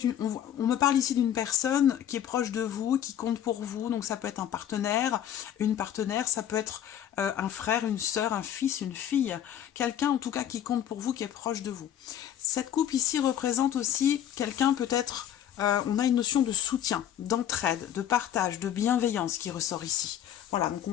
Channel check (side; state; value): right; quieter; 10.5 dB